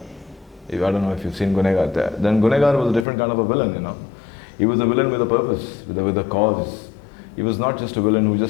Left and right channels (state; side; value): drops out; right; at 3.1 s